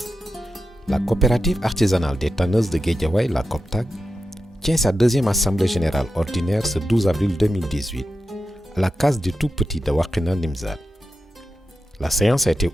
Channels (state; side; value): normal; both; correlation 0.90